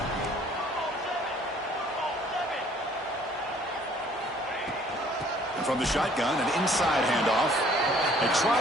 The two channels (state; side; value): normal; both; correlation 0.57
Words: From the shotgun, an inside handoff. They